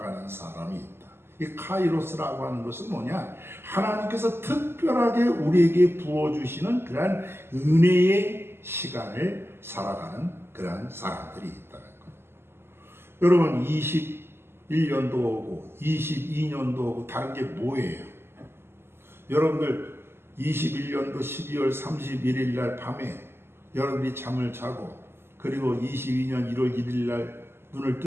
사람이 있다. 이 카이로스라고 하는 것은 뭐냐? 하나님께서 특별하게 우리에게 부어주시는 그러한 은혜의 시간을 살아가는 그러한 사람들이 있다는 거예요. 여러분 21년도 오고 22년도 오고 다른 게 뭐예요? 여러분들 21년도 12월 31일 날 밤에 여러분들이 잠을 자고 그리고 22년 1월 1일 날 눈을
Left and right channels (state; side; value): late; left; 0.12 ms